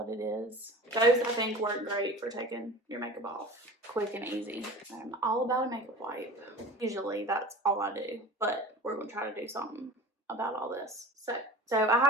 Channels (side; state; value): both; normal; correlation 0.38